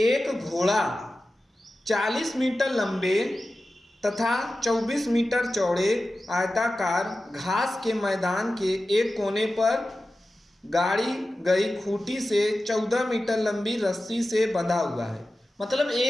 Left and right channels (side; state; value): both; normal; correlation 0.94